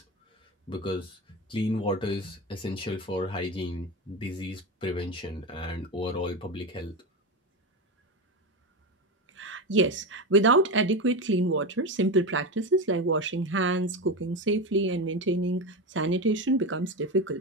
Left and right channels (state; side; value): normal; both; correlation 0.18